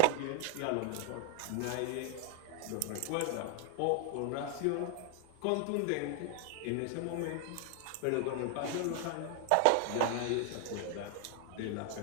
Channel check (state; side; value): different; both; correlation 0.00